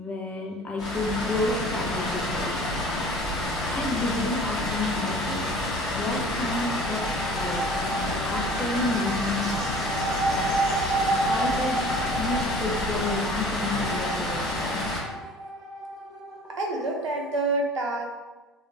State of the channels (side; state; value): both; normal; correlation 0.46